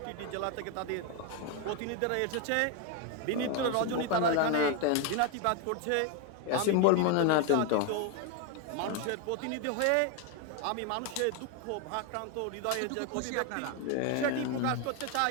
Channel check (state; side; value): different; both; correlation 0.01